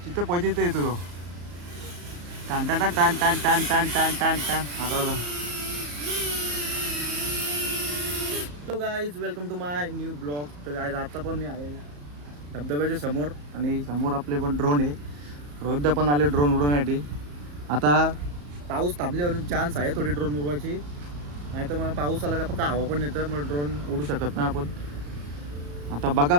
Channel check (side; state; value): left; late; 34 ms